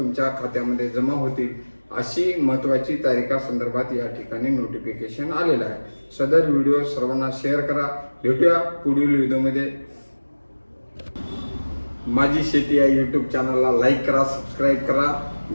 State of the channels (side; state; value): both; inverted; correlation -1.00